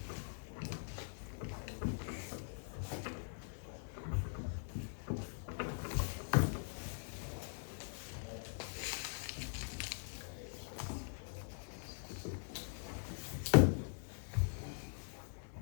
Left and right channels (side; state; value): right; silent; digital silence